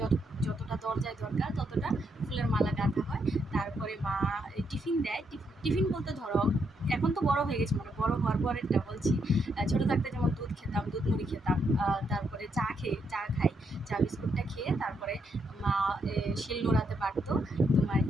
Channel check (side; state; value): both; normal; correlation 0.77